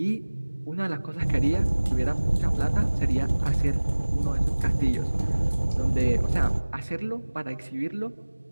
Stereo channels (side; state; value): both; inverted; correlation -1.00